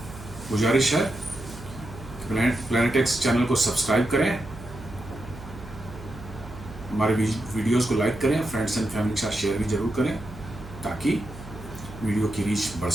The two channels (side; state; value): right; noise; hum, 15 dB below the sound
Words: गुजारिश है कि प्लैनेट एक्स चैनल को सब्सक्राइब करें, हमारे वीडियोस को लाइक करें, फ्रेंड्स एंड फैमिली के साथ शेयर भी जरूर करें ताकि वीडियो की रीच बढ़